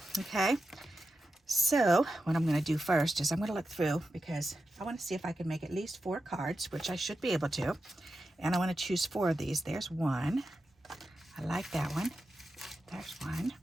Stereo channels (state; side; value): normal; both; correlation 0.90